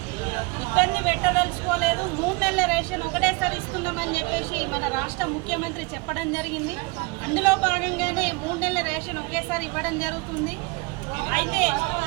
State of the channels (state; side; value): quieter; left; 27.1 dB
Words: ఇబ్బంది పెట్టదలుచుకోలేదు, 3 నెలల రేషన్ ఒకటేసారి ఇస్తున్నామని చెప్పేసి మన రాష్ట్ర ముఖ్యమంత్రి చెప్పడం జరిగింది. అందులో భాగంగానే 3 నెలల రేషన్ ఒకేసారి ఇవ్వడం జరుగుతుంది. అయితే